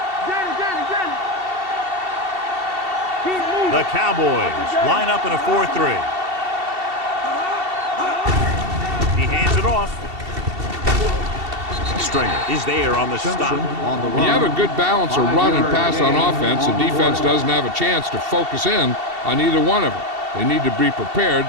The Cowboys line up in a 4-3. He hands it off. Stringer is there on the stop. When you have a good balance of run and pass on offense, the defense doesn't have a chance to focus in on either one of them. They need to be prepared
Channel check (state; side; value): late; left; 2.7 ms